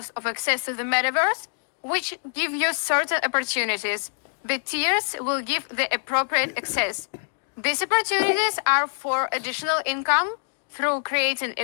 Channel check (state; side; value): silent; right; 62 dB below the other